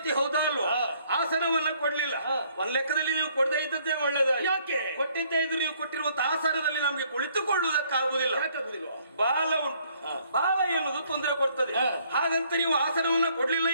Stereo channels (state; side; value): inverted; both; correlation -0.65